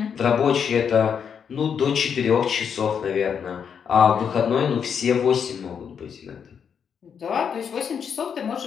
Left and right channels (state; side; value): quieter; right; 7.2 dB